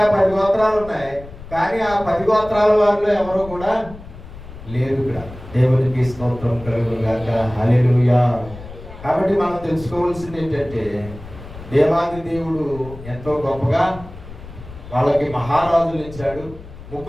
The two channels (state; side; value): noise; left; rumble, 15 dB below the sound